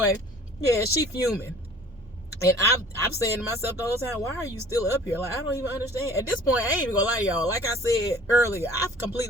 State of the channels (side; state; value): both; normal; correlation 0.49